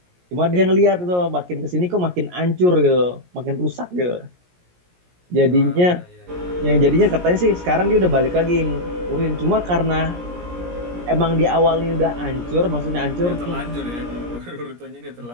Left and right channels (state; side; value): late; left; 17 ms